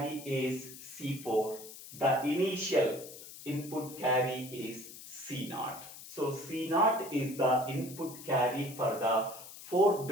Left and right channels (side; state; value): left; noise; hiss, 15 dB below the sound